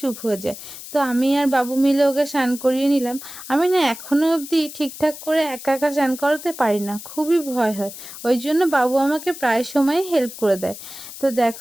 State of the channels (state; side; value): noise; left; hiss, 13 dB below the sound